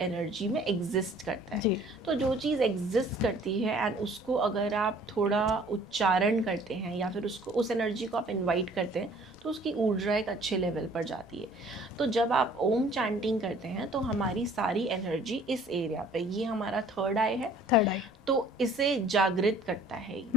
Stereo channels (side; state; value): both; normal; correlation 0.54